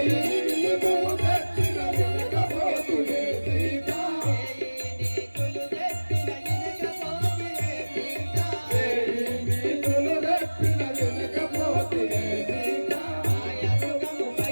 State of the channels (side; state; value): both; inverted; correlation -1.00